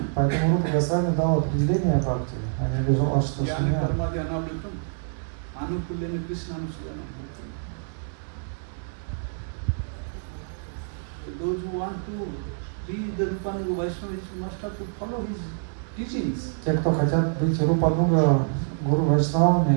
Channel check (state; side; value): silent; left; digital silence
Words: Поэтому Рупа Госвами дал определение бхакти, а не обижал Ашта Jnana Шуня. Karma Dhyanavritam, Anukulyana Krishna Anusuvana. Those who want to be the Rupanuga Vaishnavas must have to follow his teachings. Те, кто хотят быть Рупануга Гуру